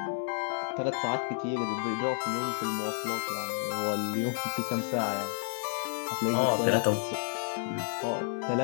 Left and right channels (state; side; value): silent; right; digital silence